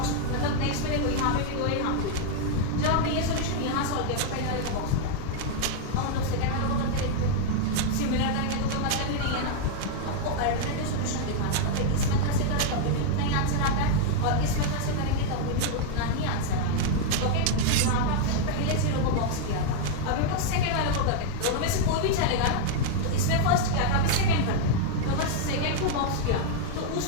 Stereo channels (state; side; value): different; both; correlation 0.00